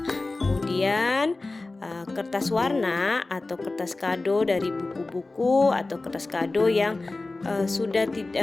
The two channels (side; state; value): right; quieter; 3.2 dB